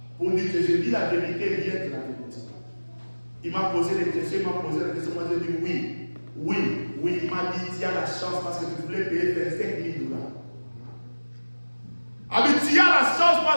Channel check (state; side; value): inverted; both; correlation -1.00